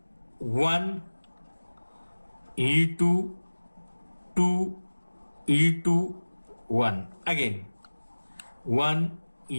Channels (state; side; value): inverted; both; correlation -1.00